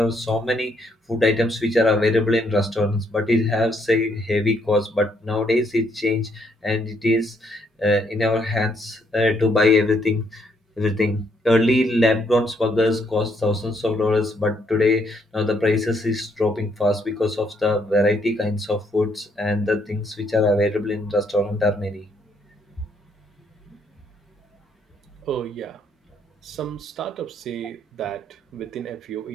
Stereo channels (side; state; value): both; normal; correlation 0.71